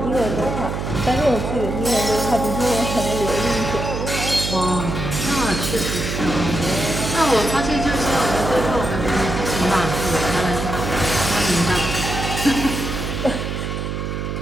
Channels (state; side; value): noise; right; hum, 4 dB below the sound